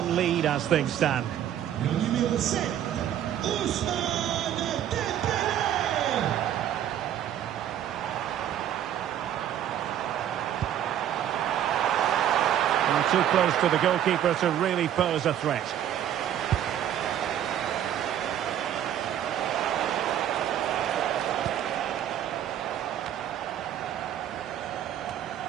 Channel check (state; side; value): quieter; left; 10.7 dB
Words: lead as things stand. Numéro 7, Ousmane Dembélé. And too close to the goalkeeper to really pose a threat.